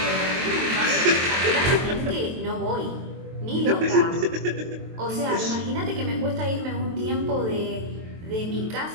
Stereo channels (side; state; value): left; late; 23 ms